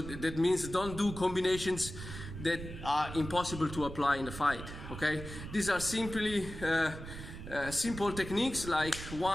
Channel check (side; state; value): right; noise; rumble, 10 dB below the sound